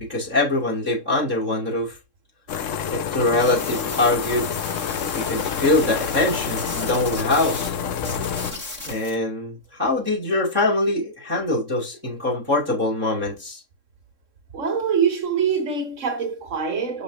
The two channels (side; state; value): left; late; 3.7 ms